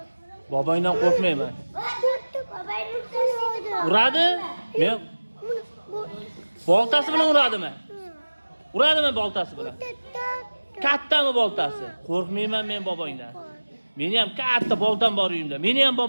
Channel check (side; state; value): both; inverted; correlation -1.00